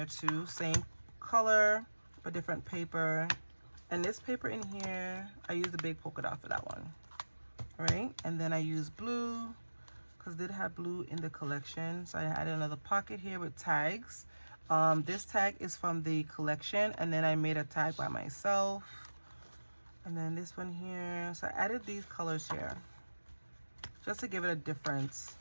too, same color but different paper, and this paper in here I used the big polka dot for that one. All right, and then I used blue because it did have blue in the collection, so I added another pocket here with tags. This tag is from the collection, and then I made a tag by myself. And then this one here, so I added these colors here just to give it a different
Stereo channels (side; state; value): both; inverted; correlation -1.00